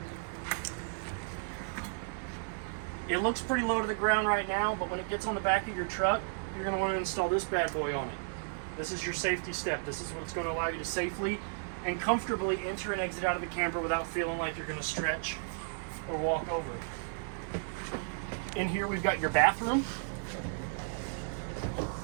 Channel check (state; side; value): silent; left; digital silence